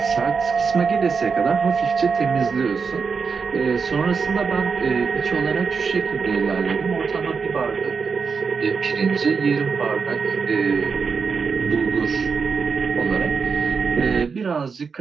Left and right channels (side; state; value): left; quieter; 5.4 dB